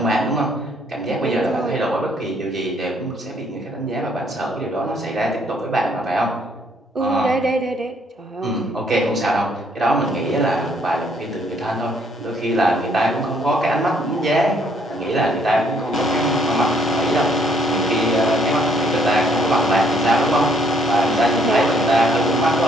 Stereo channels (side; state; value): both; normal; correlation 0.66